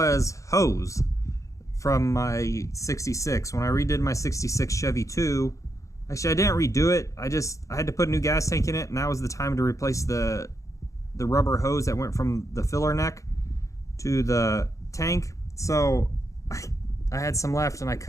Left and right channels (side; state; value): right; late; 0.15 ms